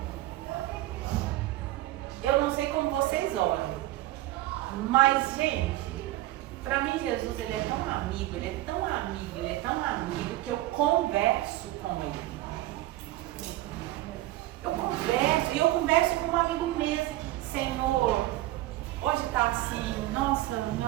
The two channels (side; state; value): left; quieter; 16.5 dB